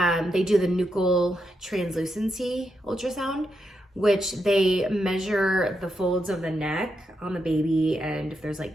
do the Nuchal Translucency Ultrasound, which they measure the folds of the neck on the baby and if there's like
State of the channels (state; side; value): normal; both; correlation 0.84